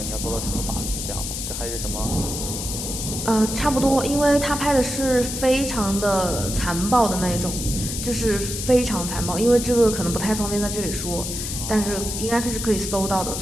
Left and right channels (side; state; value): left; noise; hiss, 5 dB below the sound